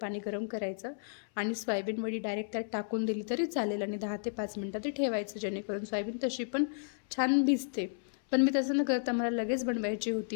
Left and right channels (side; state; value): right; silent; 56 dB below the other